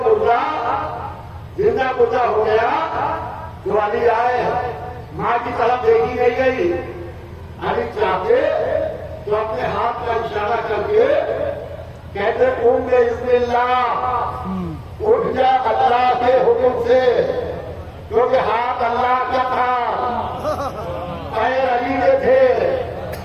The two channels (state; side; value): identical; both; correlation 1.00